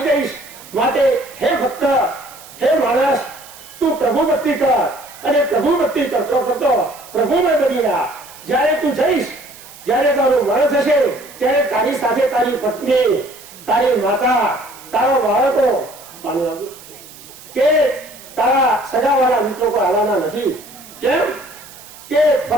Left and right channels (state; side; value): noise; right; hiss, 19 dB below the sound